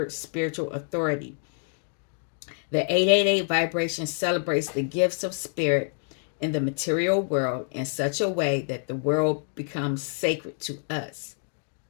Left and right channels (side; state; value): right; silent; 58 dB below the other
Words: spiritual authority. The 888 vibration celebrates the gifts of spirit in the material world in such a way that the world becomes sacred to us.